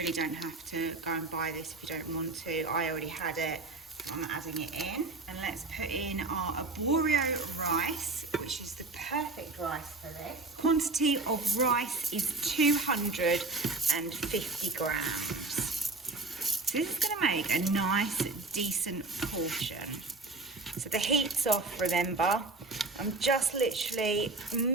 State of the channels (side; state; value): left; quieter; 3.4 dB